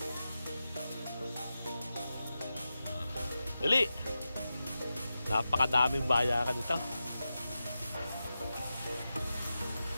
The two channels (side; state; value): both; inverted; correlation -0.91